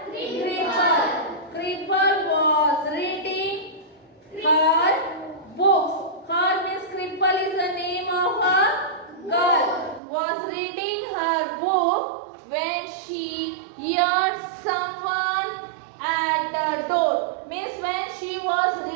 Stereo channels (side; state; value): left; drops out; at 10.0 s